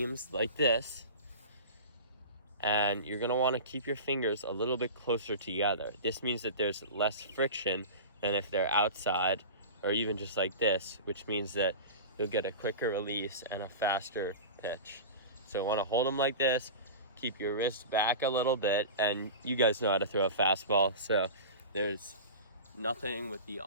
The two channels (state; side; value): inverted; both; correlation -0.31